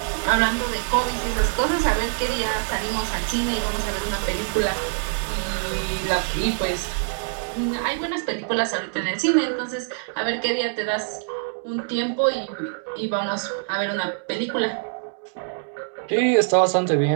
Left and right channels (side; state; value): left; silent; digital silence